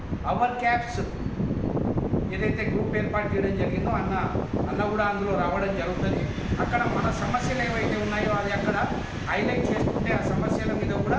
అవర్ క్యాబ్స్ ఏదైతే గ్రూప్ ఏర్పాటు చేయడం జరిగిందో అన్న కూడా అందులో రావడం జరుగుతుంది. అక్కడ మన సమస్యలు ఏవైతే ఉన్నాయో అది అక్కడ హైలైట్ చేసుకుంటే ఆ సమస్యల మీద కూడా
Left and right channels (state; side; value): identical; both; correlation 1.00